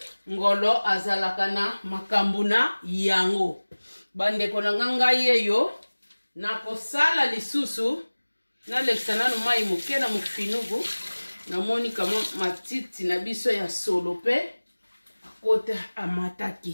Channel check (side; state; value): both; inverted; correlation -1.00